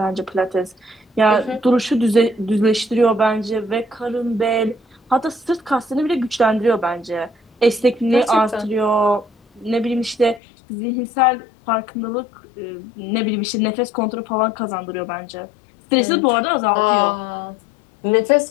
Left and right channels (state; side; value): drops out; right; at 10.4 s